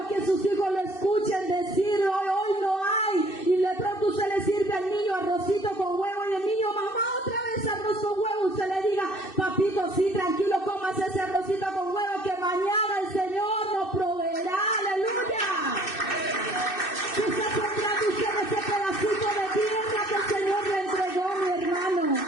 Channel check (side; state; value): right; late; 2.6 ms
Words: que sus hijos lo escuchen decir, hoy no hay. Y de pronto usted le sirve al niño arrocito con huevo y el niño, mamá, otra vez arroz con huevo. Usted le diga, papito, sí, tranquilo, comas ese arrocito con huevo que mañana el Señor nos proveerá. ¡Aleluya! ¿Qué está sembrando usted ese pedacito de tierra que el Señor le entregó, mi hermano?